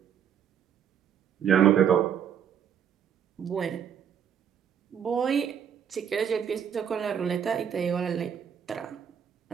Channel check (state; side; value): quieter; left; 8.3 dB